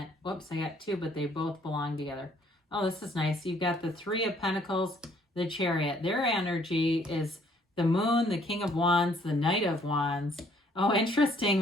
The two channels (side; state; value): both; normal; correlation 0.63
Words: Whoops, I got 2, but they both belong together. Oh, this is nice. You've got the 3 of Pentacles, the Chariot. Their energy is the Moon, the King of Wands, the Knight of Wands. Oh, interesting.